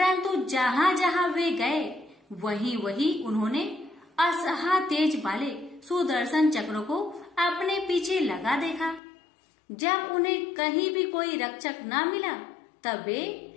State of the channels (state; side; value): drops out; right; at 9.0 s